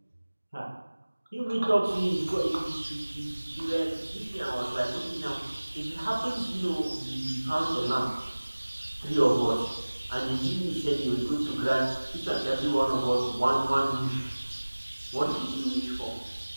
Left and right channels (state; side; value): inverted; both; correlation -1.00